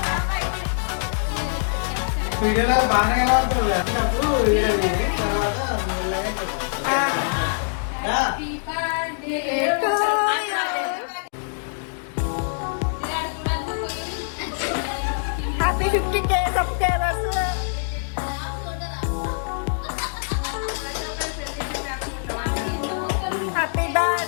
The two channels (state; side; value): silent; right; digital silence